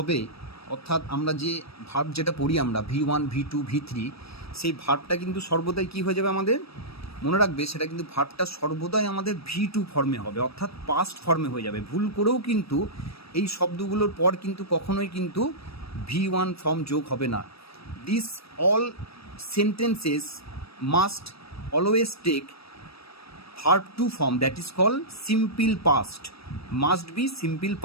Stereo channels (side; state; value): right; late; 0.77 ms